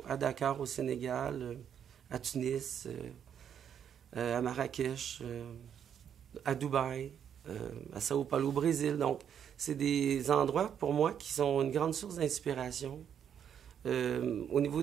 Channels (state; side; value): quieter; left; 8.6 dB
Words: à Dakar, au Sénégal, à Tunis, à Marrakech, à Dubaï, à Sao Paulo, au Brésil. Donc, c'est des endroits, pour moi, qui sont une grande source d'inspiration au niveau